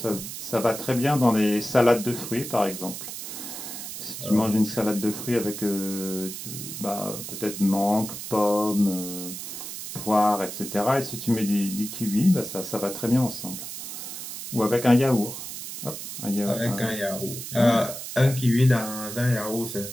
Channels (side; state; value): right; noise; hiss, 8 dB below the sound